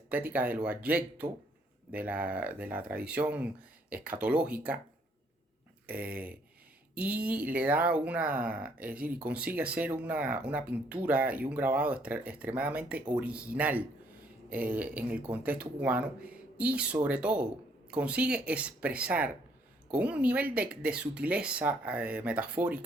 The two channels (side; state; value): both; normal; correlation 0.66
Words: de lo abyecto, de la tradición escatológica, eh, y le da es decir, y consigue hacer una pintura y un grabado extremadamente original en el contexto cubano y sobre todo consigue expresar con un nivel de sutileza